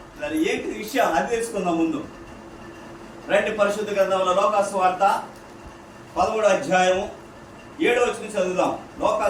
ఏంటి విషయం అది తెలుసుకుందాం ముందు. రండి పరిశుద్ధ గ్రంథంలో లోకాసు వార్త 13వ అధ్యాయము 7వ వచనం చదువుదాం.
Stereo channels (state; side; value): identical; both; correlation 1.00